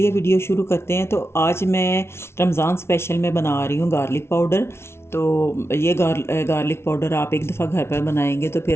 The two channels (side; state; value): right; late; 0.12 ms